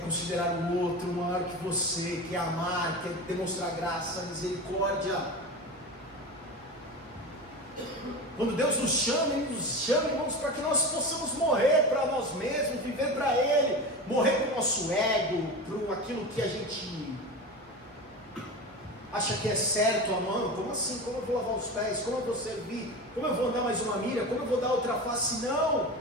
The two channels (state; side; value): normal; both; correlation 0.27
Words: o outro maior que você, que é amar, que é demonstrar graça, misericórdia. Quando Deus nos chama, Ele nos chama, irmãos, para que nós possamos morrer para nós mesmos, viver para Ele, morrer para o nosso ego, para aquilo que a gente acha que é certo, amando. Como assim? Como eu vou lavar os pés? Como eu vou servir? Como eu vou dar mais uma milha? Como eu vou dar outra face?